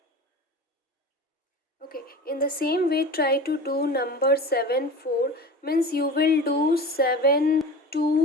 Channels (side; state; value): both; normal; correlation 0.34